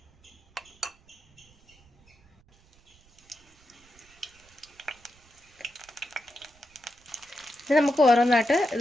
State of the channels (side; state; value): right; noise; rumble, 30 dB below the sound